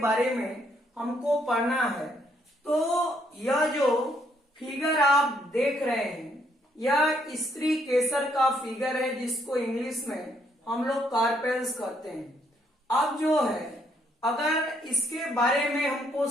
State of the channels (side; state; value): both; normal; correlation 0.71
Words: में हमको पढ़ना है। तो यह जो फिगर आप देख रहे हैं, यह स्त्री केसर का फिगर है, जिसको इंग्लिश में हम लोग कार्पेल्स कहते हैं। अब जो है अगर इसके बारे में हमको